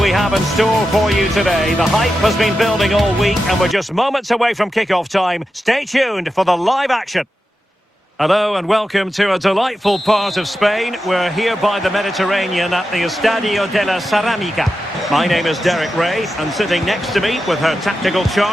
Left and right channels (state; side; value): normal; both; correlation 0.90